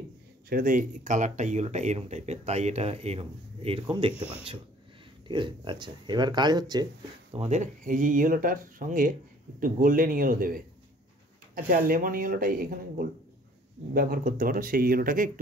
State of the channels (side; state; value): both; normal; correlation 0.55